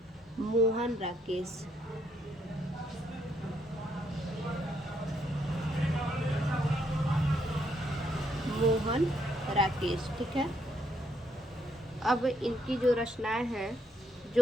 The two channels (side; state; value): both; normal; correlation 0.73